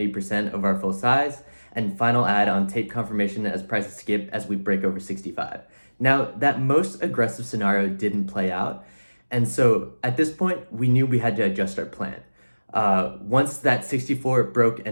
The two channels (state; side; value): inverted; both; correlation -1.00